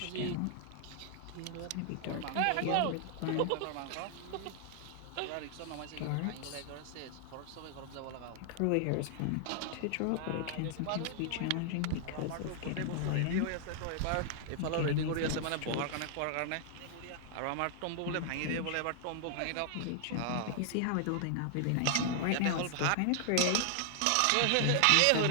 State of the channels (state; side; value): different; both; correlation 0.00